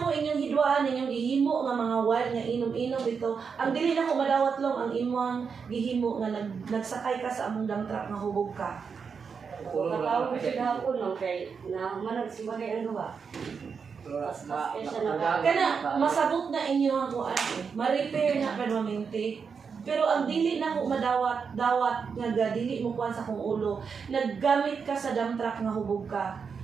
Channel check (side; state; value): left; quieter; 5.9 dB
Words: inyong hidwaan, inyong gihimo nga mga wild nga inom-inom dito. Ang dili na ko madawat lang ang imong gihimo nga nagsakay ka sa among dump truck nga hubog ka. Nakatawag ko siya gahapon no kay na manag si bagay ang gawa. Kana masabot na inyo ang kuan, ma-repair na permanente. Pero ang dili na ko madawat nga dili mo kuan sa kong ulo. Naggamit ka sa dump truck nga hubog ka.